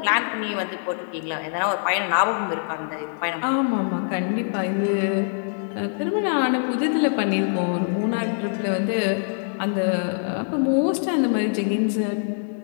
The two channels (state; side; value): silent; right; digital silence